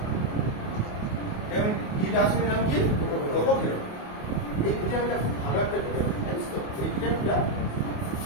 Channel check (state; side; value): late; right; 28 ms